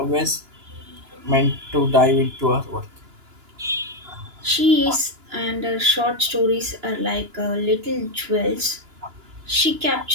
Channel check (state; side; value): late; left; 2.9 ms